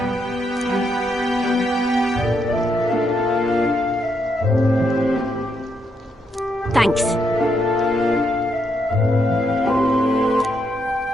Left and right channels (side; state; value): both; normal; correlation 0.78